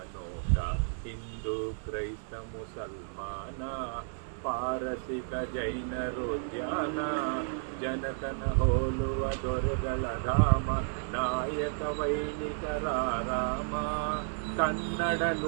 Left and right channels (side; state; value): left; silent; digital silence